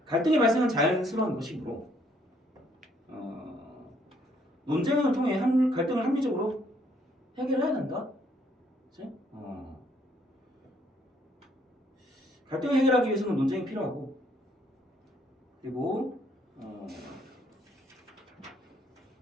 갈등의 발생은 자연스러운 것이므로 논쟁을 통해 갈등을 합리적으로 해결해야 된다. 그치? 갈등을 해결하기 위해서는 논쟁이 필요하고, 그리고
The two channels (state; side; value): normal; both; correlation 0.67